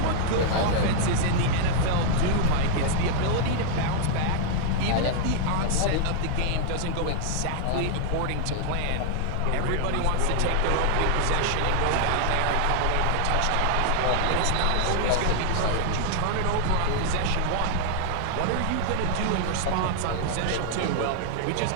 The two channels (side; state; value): both; different; correlation -0.01